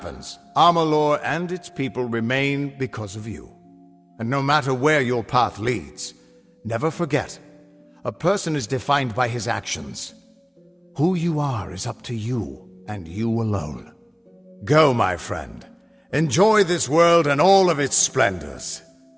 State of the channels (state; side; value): identical; both; correlation 1.00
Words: Amalur and its people remain because of you. And no matter where your path leads, never forget, a person is defined by his actions. Who you are is up to you, and you alone. Go, my friend. Enjoy this world and all of its splendors.